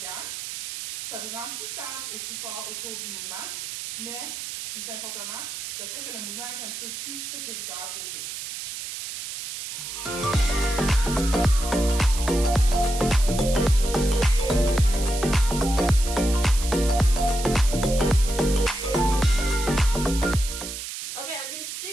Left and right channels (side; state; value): right; noise; hiss, 8 dB below the sound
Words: Ça vous rend plus stable et plus fort au cours du mouvement, mais plus importantement, ça fait que le mouvement est un petit peu plus sécuritaire pour vous. Okay, I'm going to